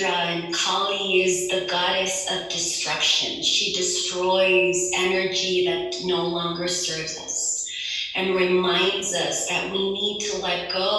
and Kali is the goddess of destruction. She destroys energy that no longer serves us and reminds us that we need to let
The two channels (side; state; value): both; identical; correlation 1.00